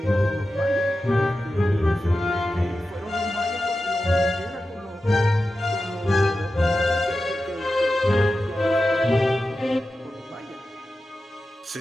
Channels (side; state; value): both; normal; correlation 0.92